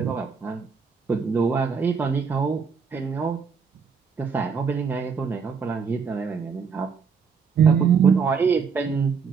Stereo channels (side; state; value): left; quieter; 5.9 dB